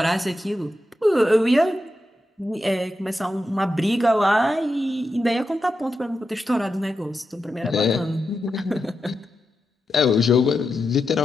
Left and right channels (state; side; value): normal; both; correlation 0.88